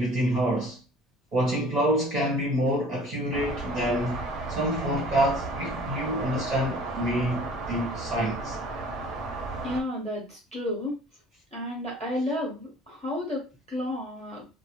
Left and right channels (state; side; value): normal; both; correlation 0.49